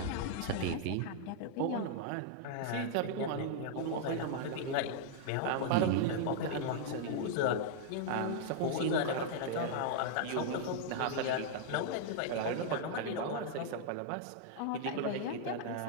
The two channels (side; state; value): both; different; correlation -0.01